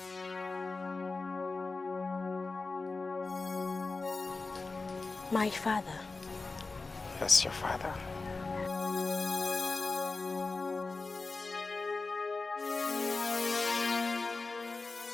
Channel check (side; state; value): right; quieter; 3.8 dB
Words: My father. Yes, your father.